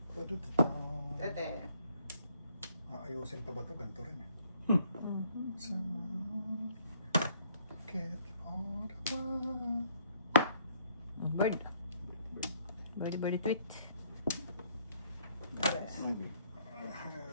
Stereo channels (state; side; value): inverted; both; correlation -0.66